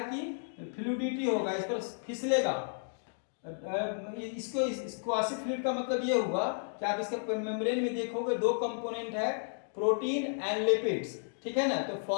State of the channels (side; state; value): right; silent; digital silence